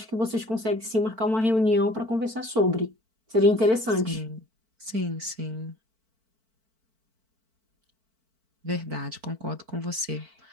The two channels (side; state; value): left; late; 4.5 ms